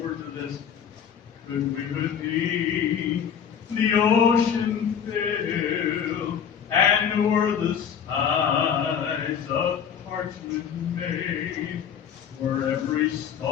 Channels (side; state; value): right; quieter; 7.9 dB